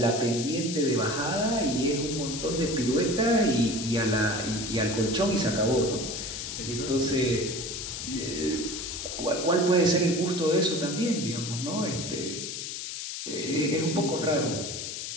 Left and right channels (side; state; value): left; noise; hiss, 6 dB below the sound